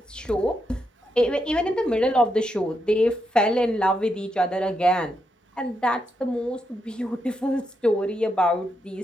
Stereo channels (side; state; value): both; normal; correlation 0.82